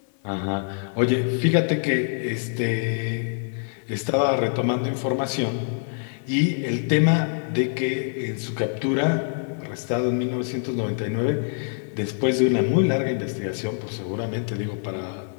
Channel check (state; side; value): silent; right; 62 dB below the other